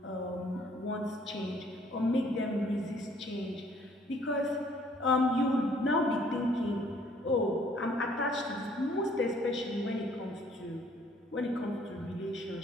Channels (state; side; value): normal; both; correlation 0.61